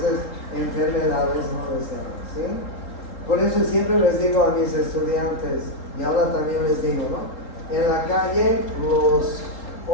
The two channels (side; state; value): right; late; 3.7 ms